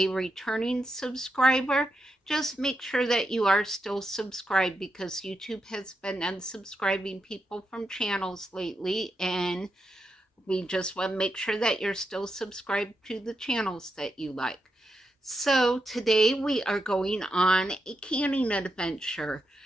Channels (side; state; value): both; normal; correlation 0.85